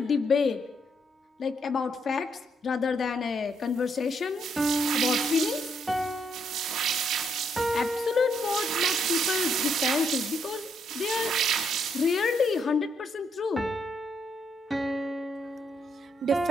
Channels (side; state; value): both; normal; correlation 0.75